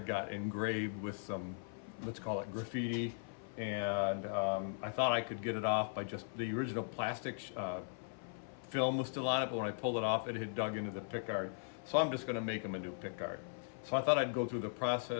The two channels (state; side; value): silent; right; 52 dB below the other